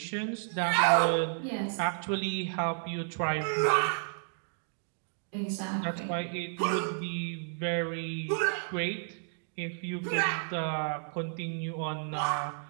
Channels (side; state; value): left; silent; digital silence